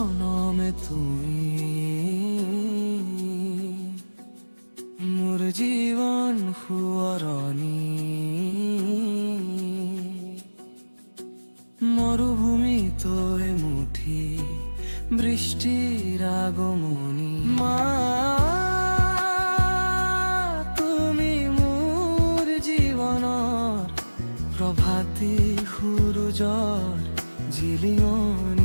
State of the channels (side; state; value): both; inverted; correlation -1.00